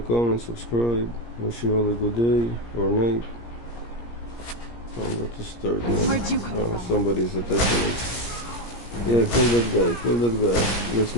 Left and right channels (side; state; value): right; late; 17 ms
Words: comment, subscribe. Wish you all a good day or night. I'm about to start now. Where'd you come from? Somebody's attacking me. Yeah, kill that guy. That's